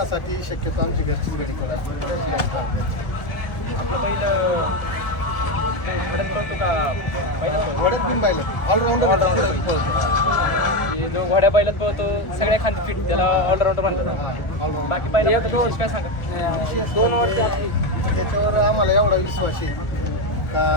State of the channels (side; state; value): right; late; 1.4 ms